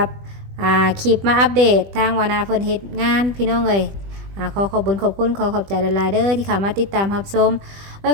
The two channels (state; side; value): late; left; 20 ms